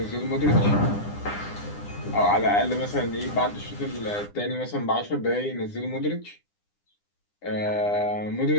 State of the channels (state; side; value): late; right; 9.9 ms